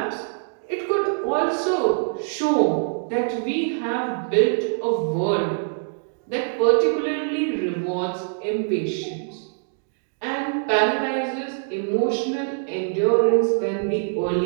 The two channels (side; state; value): left; silent; digital silence